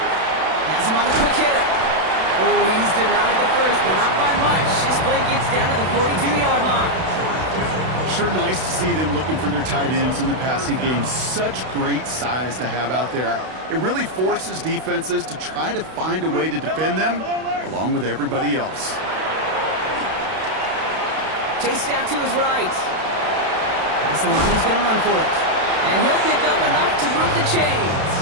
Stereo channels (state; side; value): late; left; 32 ms